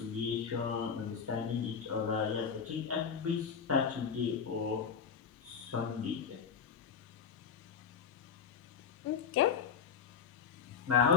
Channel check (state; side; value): quieter; right; 6.7 dB